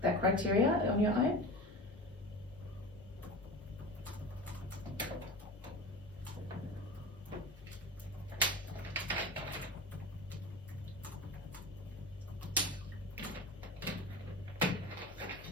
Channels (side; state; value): both; normal; correlation 0.30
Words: that criteria on your own.